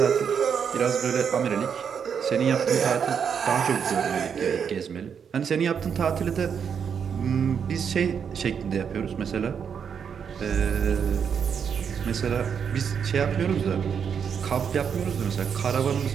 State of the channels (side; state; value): left; quieter; 7.2 dB